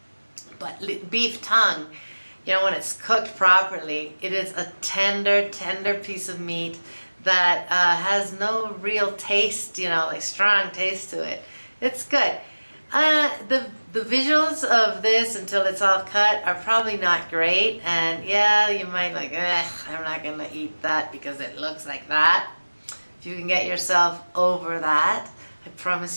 but beef tongue, you know, when it's cooked properly, it is a tender piece of meat that has no real taste, you know, like strong taste to it. It's good. The visuals of this until it's all cut are probably not great, and yeah, you might like, I'm not gonna eat that because it looks like that. If you can get yourself over that, I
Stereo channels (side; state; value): both; inverted; correlation -1.00